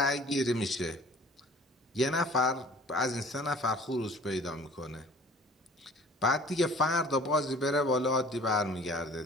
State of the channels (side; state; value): both; normal; correlation 0.49